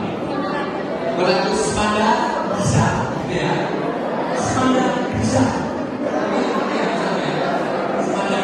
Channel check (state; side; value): identical; both; correlation 1.00